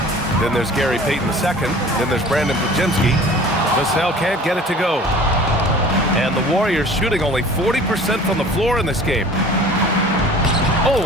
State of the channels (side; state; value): both; normal; correlation 0.45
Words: Then there's Gary Payton II. Then there's Brandon Podziemski. Vassell can't get it to go. And the Warriors shooting only 40% from the floor in this game.